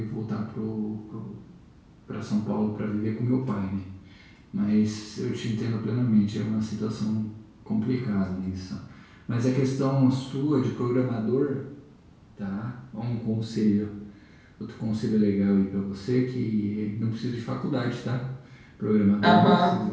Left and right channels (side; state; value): both; identical; correlation 1.00